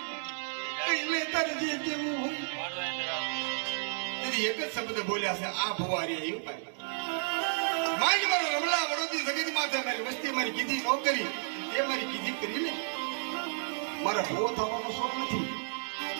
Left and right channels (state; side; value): silent; left; digital silence